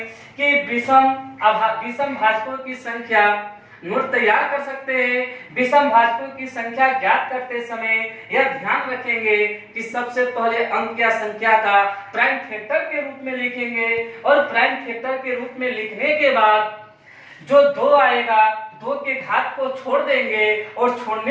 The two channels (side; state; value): both; identical; correlation 1.00